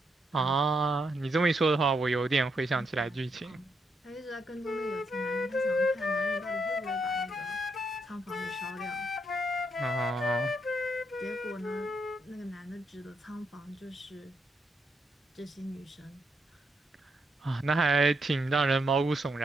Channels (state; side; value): normal; both; correlation 0.79